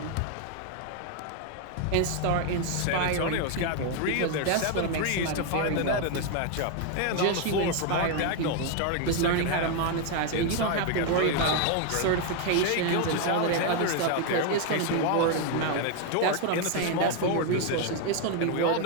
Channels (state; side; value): different; both; correlation 0.01